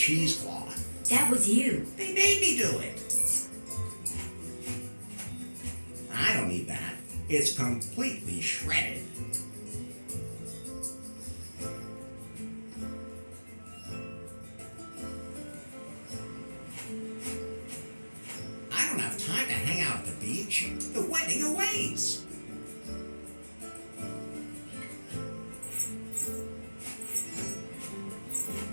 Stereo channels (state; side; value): inverted; both; correlation -1.00